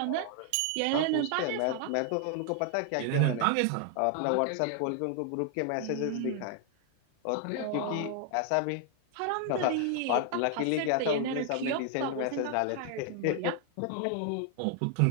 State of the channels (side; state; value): both; different; correlation 0.00